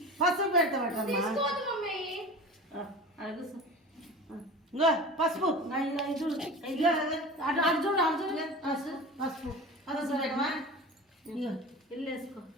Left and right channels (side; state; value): both; normal; correlation 0.34